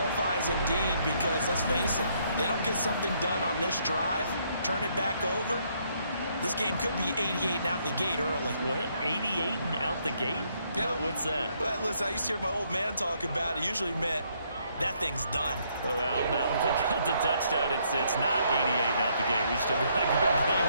indeed because, let's face it, they don't get something done on this drive, turn it back over, this game could be 88 and out the gate early. What? 88 and out the gate? Yeah. What's that? Well, listen, I used to hear my old man talk about it. Usually meant that thing's done. Well, now that they got the touchdown, it's not 88 and out the gate. We still got a good game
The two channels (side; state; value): both; inverted; correlation -0.71